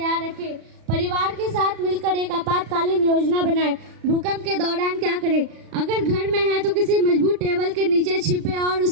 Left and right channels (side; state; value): left; late; 36 ms